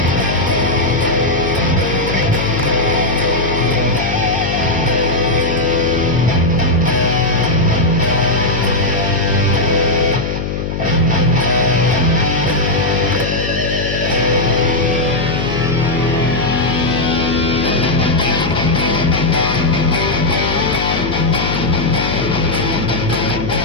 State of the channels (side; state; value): left; noise; hum, 4 dB below the sound